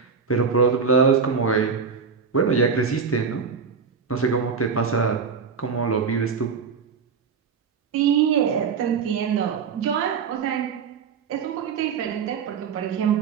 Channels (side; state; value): left; quieter; 5.8 dB